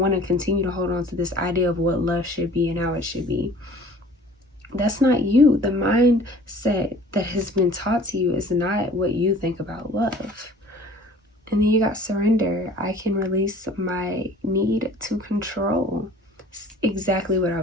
to continue to hold on to this idea of what love should be and how it should be. That's not you. The mindset that has been taught to you is not what you think about love. And then you got surrender. I can release my need to control. Exactly what I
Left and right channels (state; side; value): normal; both; correlation 0.48